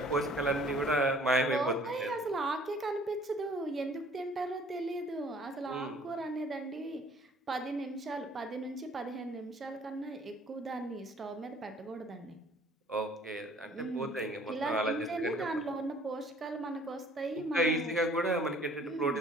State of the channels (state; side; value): normal; both; correlation 0.55